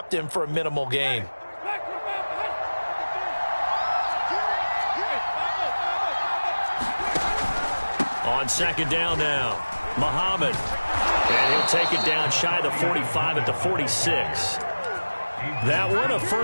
him for a minimal gain. On 2nd down now, Muhammad. And he'll take it down shy of the 45 at the 46. That one a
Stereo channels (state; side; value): inverted; both; correlation -1.00